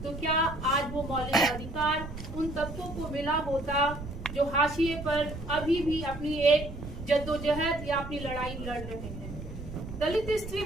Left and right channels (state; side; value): noise; right; rumble, 10 dB below the sound